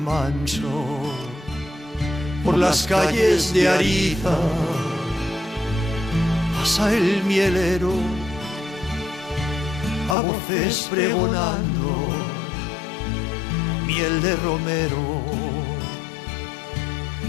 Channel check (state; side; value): drops out; right; at 10.2 s